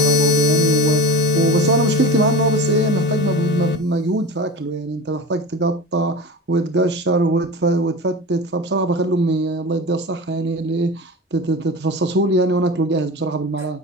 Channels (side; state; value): both; normal; correlation 0.32